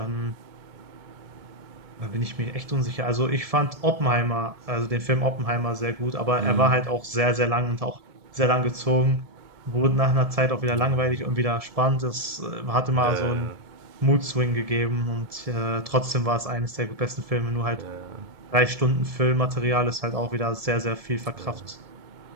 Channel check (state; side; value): late; left; 1.7 ms